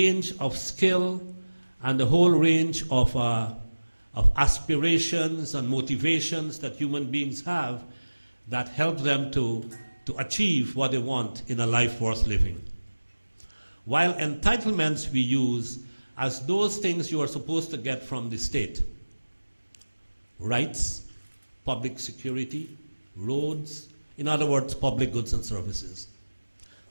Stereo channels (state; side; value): inverted; both; correlation -1.00